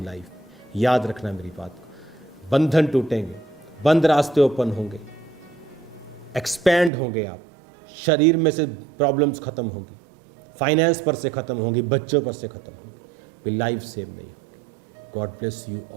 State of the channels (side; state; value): left; drops out; at 6.9 s